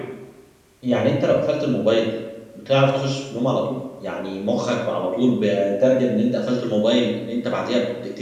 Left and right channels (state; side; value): identical; both; correlation 1.00